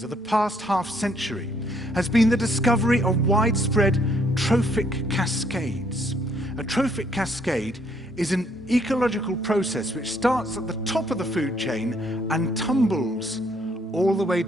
of the past half-century has been the discovery of widespread trophic cascades. A trophic cascade is an ecological process which starts at the top of the food chain and tumbles all the way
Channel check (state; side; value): normal; both; correlation 0.68